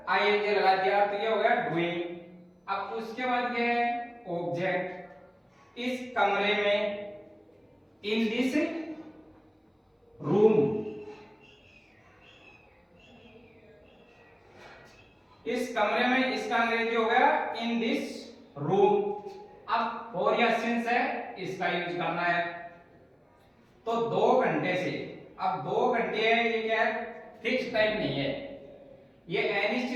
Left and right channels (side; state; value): both; identical; correlation 1.00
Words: आईएनजी लगा दिया तो ये हो गया डूइंग। अब उसके बाद क्या है, ऑब्जेक्ट, इस कमरे में, इन दिस रूम, इस कमरे में, इसका अंग्रेजी हो गया इन दिस रूम। अब फॉर या सिंस है, इसका यूज करना है। तो 2 घंटे से, अब 2 घंटे है, ये क्या है, फिक्स टाइम नहीं है, ये